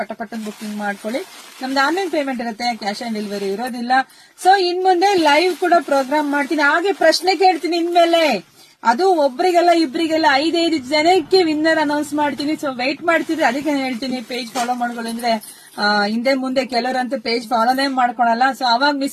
ಬುಕಿಂಗ್ ಮಾಡ್ಕೊಳ್ಳಿ. ನಮ್ದು ಆನ್ಲೈನ್ ಪೇಮೆಂಟ್ ಇರುತ್ತೆ, ಕ್ಯಾಶ್ ಆನ್ ಡೆಲಿವರಿ ಇರೋದಿಲ್ಲ. ಸೊ ಇನ್ ಮುಂದೆ ಲೈವ್ ಕೂಡ ಪ್ರೋಗ್ರಾಮ್ ಮಾಡ್ತೀನಿ, ಹಾಗೆ ಪ್ರಶ್ನೆ ಕೇಳ್ತೀನಿ ಇನ್ಮೇಲೆ. ಅದು ಒಬ್ರಿಗೆಲ್ಲ ಇಬ್ರಿಗೆಲ್ಲ 5 ಜನಕ್ಕೆ ವಿನ್ನರ್ ಅನೌನ್ಸ್ ಮಾಡ್ತೀನಿ. ಸೊ ವೆಯ್ಟ್ ಮಾಡ್ತಿದ್ರೆ ಅದಕ್ಕೆ ಹೇಳ್ತೀನಿ, ಪೇಜ್ ಫಾಲೋ ಮಾಡ್ಕೊಳ್ಳಿ. ಅಂದ್ರೆ ಹಿಂದೆ ಮುಂದೆ ಕೆಲವರಂತೂ ಪೇಜ್ ಫಾಲೋನೇ ಮಾಡ್ಕೊಳಲ್ಲ. ಸೊ ಅವಾಗ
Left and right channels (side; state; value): both; identical; correlation 1.00